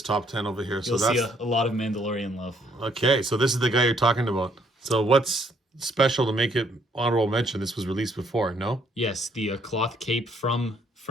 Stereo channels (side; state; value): both; normal; correlation 0.67